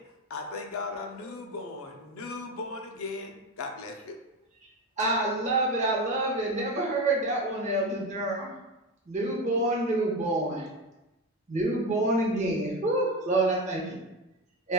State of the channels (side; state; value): both; normal; correlation 0.19